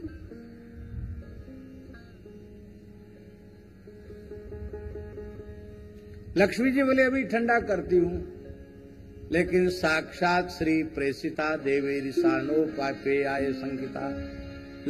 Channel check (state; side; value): identical; both; correlation 1.00